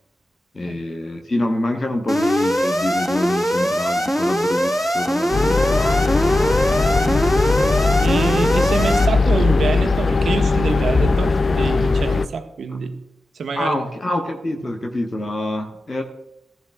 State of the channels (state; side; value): normal; both; correlation 0.92